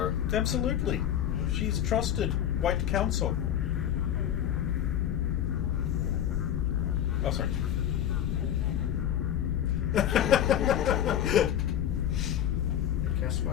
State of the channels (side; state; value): right; quieter; 10.4 dB